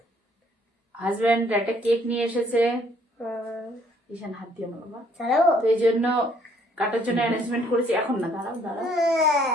হাজবেন্ড একটা কেক নিয়ে এসেছে। ঈশান হাত দিয়ে আমার বাবা, তো এই জন্য কাটার জন্য অ্যারেঞ্জমেন্ট করেছি। এখন না, দাঁড়াও দাঁড়াও।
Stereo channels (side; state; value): both; normal; correlation 0.64